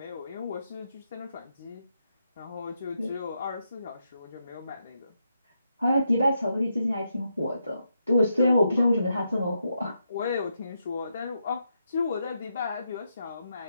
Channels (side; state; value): both; inverted; correlation -0.82